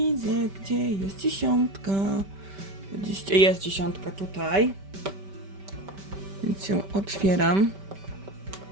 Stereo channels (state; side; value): late; left; 5.1 ms